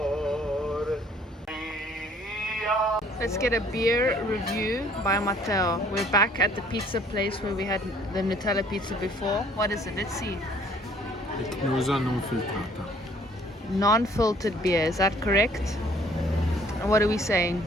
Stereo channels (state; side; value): normal; both; correlation 0.59